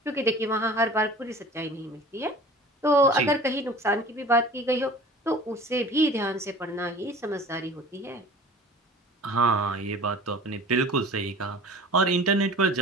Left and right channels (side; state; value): both; normal; correlation 0.42